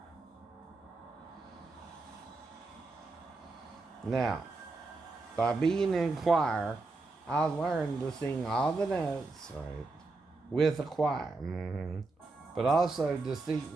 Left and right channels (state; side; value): quieter; left; 3.6 dB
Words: Now, by being in choir, I learned to sing all the notes, right, with a choir. But also